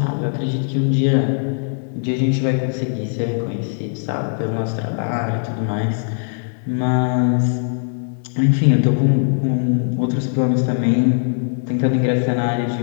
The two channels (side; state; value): right; silent; digital silence